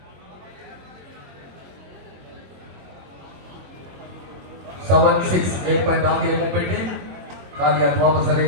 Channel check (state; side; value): late; left; 22 ms